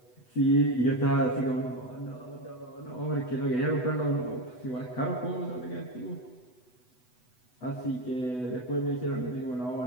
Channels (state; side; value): late; right; 8.0 ms